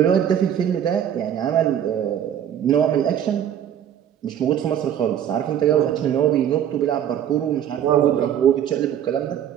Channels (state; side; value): quieter; left; 9.9 dB